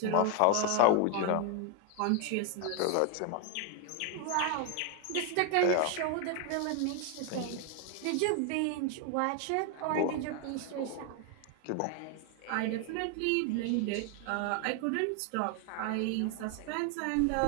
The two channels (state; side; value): different; both; correlation 0.01